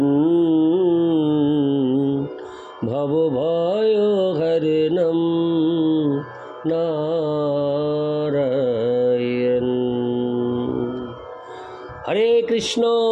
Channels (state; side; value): identical; both; correlation 1.00